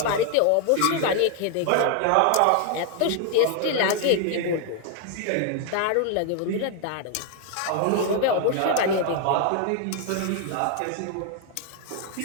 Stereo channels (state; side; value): different; both; correlation 0.00